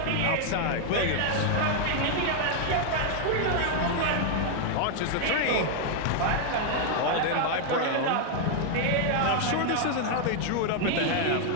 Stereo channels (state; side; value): different; both; correlation 0.00